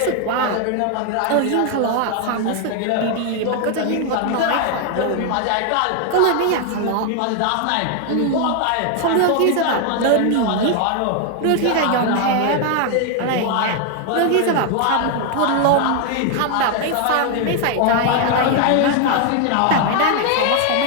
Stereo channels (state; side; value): different; both; correlation 0.00